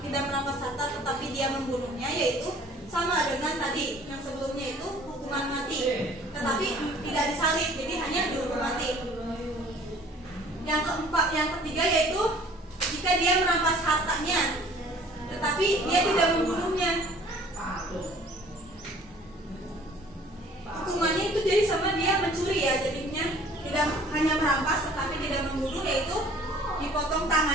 tidak merampas harta tetapi dia membunuhnya, yaitu sama dengan tadi yang sebelumnya itu hukuman mati tetapi tidak disalib, jadi hanya dihukum mati. Yang ketiga yaitu jika dia merampas hartanya tetapi dia tidak membunuhnya. Hukumannya itu jadi sama dia mencuri ya, jadinya tidak hanya merampas tetapi tidak membunuh, yaitu dipotong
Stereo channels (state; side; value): normal; both; correlation 0.52